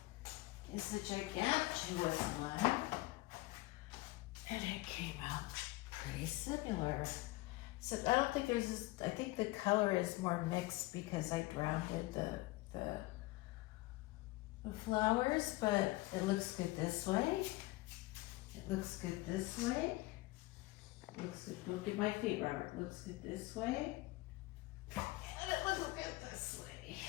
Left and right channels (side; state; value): right; quieter; 20.6 dB